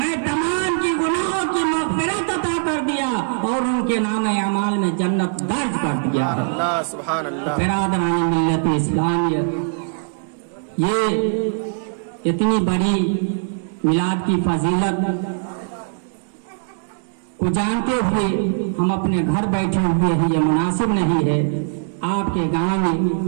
تمام کی گناہوں کی مغفرت عطا کر دیا اور ان کے نام اعمال میں جنت درج کر دیا۔ اللہ سبحان اللہ۔ برادران ملت اسلامیہ، یہ اتنی بڑی میلاد کی فضیلت کو جانتے ہوئے ہم اپنے گھر بیٹھے ہوئے ہیں، یہ مناسب نہیں ہے۔ آپ کے گاؤں میں،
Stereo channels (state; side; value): silent; left; digital silence